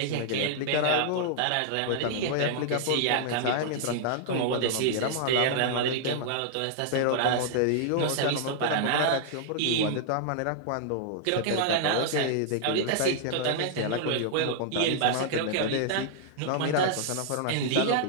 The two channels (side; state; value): both; different; correlation -0.01